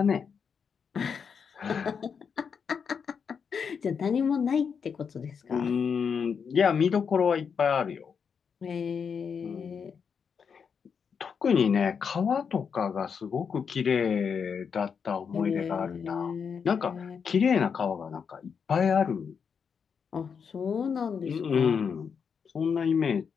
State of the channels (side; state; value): right; quieter; 6.4 dB